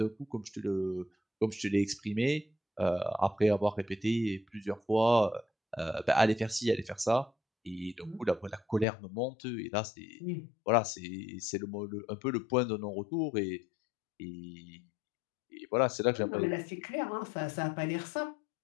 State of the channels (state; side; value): drops out; right; at 8.8 s